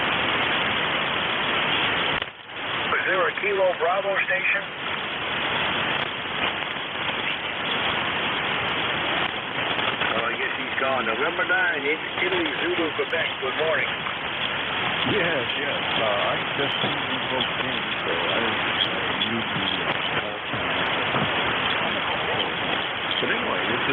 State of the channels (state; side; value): identical; both; correlation 1.00